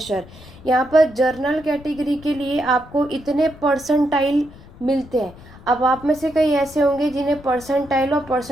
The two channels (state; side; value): noise; left; rumble, 20 dB below the sound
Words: यहाँ पर जर्नल कैटेगरी के लिए आपको इतने परसेंटाइल मिलते हैं। अब आप में से कई ऐसे होंगे जिन्हें परसेंटाइल और